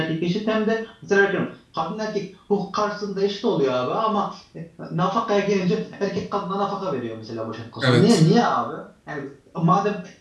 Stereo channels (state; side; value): identical; both; correlation 1.00